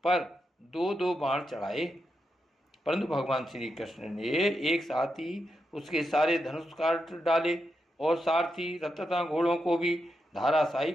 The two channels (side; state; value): both; normal; correlation 0.86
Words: पर 2-2 बाण चढ़ाए, परंतु भगवान श्री कृष्ण ने एक साथ ही उसके सारे धनुष काट डाले और सारथी रथ तथा घोड़ों को भी धाराशायी